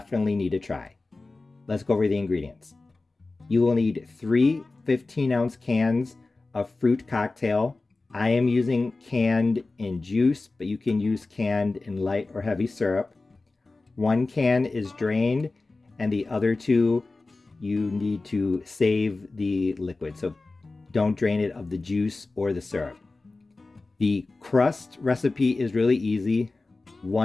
need to try. Let's go over the ingredients. You will need 3 15-ounce cans of fruit cocktail. I am using canned in juice, but you can use canned in light or heavy syrup. 1 can is drained, and the other 2 you need to save the liquid, so don't drain it of the juice or the syrup. The crust recipe is really easy.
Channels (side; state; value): right; quieter; 3.4 dB